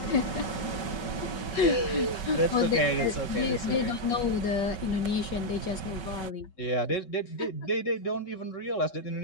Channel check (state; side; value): late; right; 5.3 ms